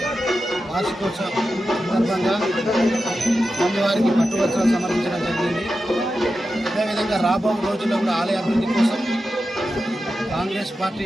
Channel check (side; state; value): both; normal; correlation 0.91